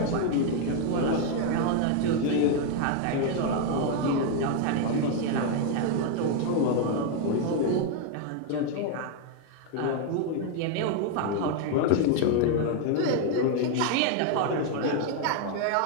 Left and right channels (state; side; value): different; both; correlation 0.01